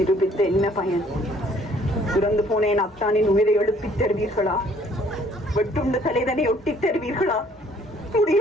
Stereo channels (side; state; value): both; normal; correlation 0.60